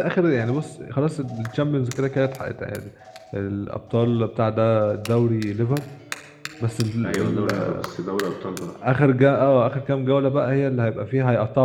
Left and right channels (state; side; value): identical; both; correlation 1.00